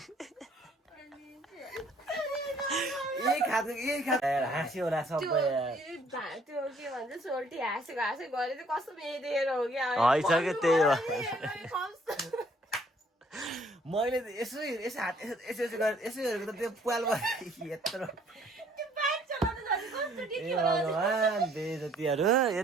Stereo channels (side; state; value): both; normal; correlation 0.62